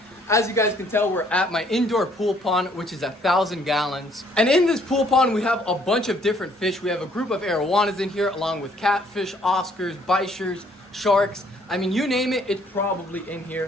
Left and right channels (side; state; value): both; normal; correlation 0.64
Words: As you guys can tell, we're at my indoor pool pond, which is 1,000 gallons. And in this pool pond, we have a bunch of different fish. We have a group of arowanas in here, along with catfish, oscars, bichers, sharks. I mean, you name it, it's probably in